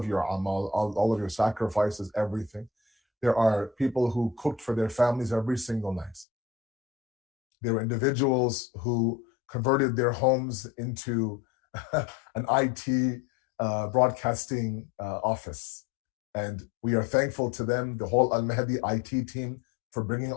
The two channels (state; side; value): drops out; right; at 6.2 s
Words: your amal, all of your sacrifices, everything. There are people who cooked for their families every single night. There were individuals who converted their homes into an IT broadcasting office. And we are thankful to them, the whole Al-Mahdi IT team, for bringing